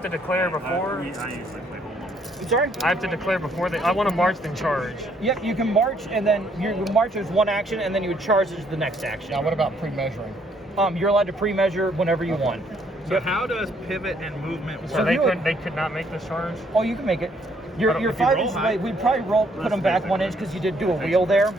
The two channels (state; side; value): normal; both; correlation 0.67